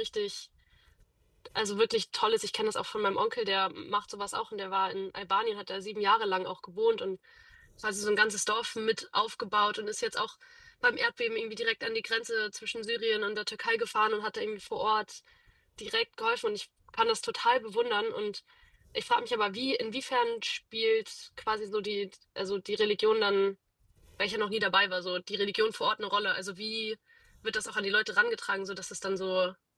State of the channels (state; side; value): identical; both; correlation 1.00